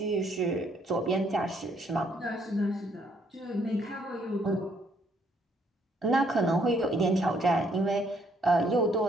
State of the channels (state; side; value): normal; both; correlation 0.68